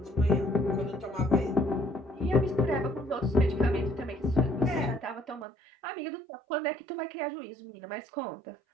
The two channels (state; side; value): drops out; left; at 5.5 s